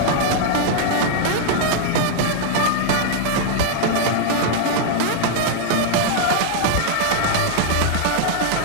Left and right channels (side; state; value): both; different; correlation -0.01